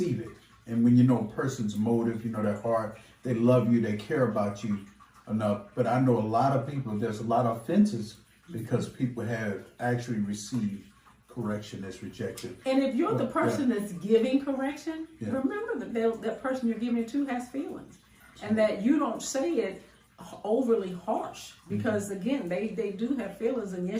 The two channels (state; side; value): identical; both; correlation 1.00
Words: it. And when you know a person's motive, you know their heart, they love you, they care about you enough. But I know a lot of people, there's a lot of offenses because people have actually received correction as rejection. And if you're the person that's giving correction, remember that that person you're giving it to has feelings, and that you don't say it overly harsh, because again, they do have feelings, and